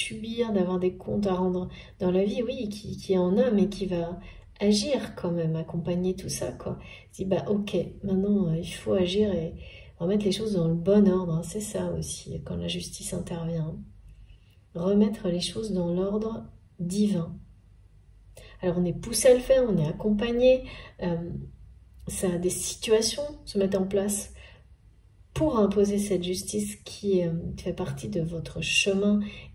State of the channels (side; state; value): both; identical; correlation 1.00